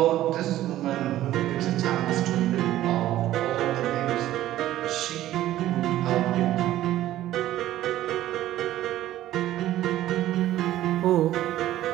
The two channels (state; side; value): quieter; left; 13.9 dB